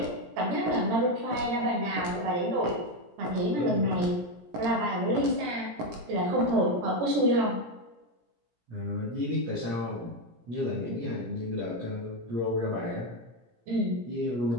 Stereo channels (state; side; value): late; left; 17 ms